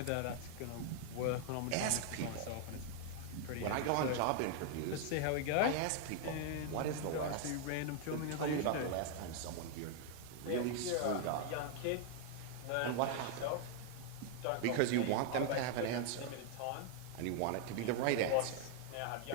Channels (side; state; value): both; different; correlation 0.00